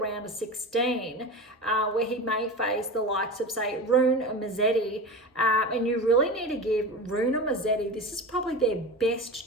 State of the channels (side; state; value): both; normal; correlation 0.28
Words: of 16, where he may face the likes of, say, Rune or Musetti. And you really need to give Rune or Musetti, this is probably their best